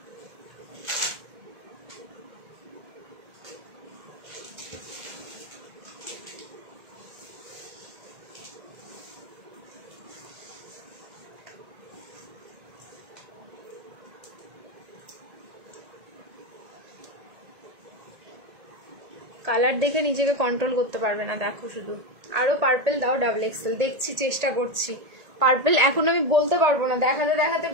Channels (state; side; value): late; left; 1.8 ms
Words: কালার দেখে নিজেকে কন্ট্রোল করতে পারবে না, দেখো শুধু। আরো পার্পল দাও ডাবল এক্সেল, দেখছি, চেষ্টা করছি। পার্পল এখন আমি বলতে পারবো না, দেখাতে দেখাতে